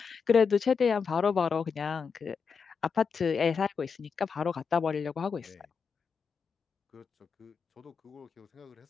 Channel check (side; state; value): right; quieter; 5.8 dB